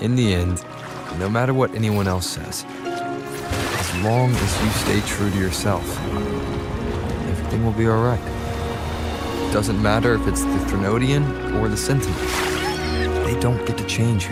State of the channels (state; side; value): identical; both; correlation 1.00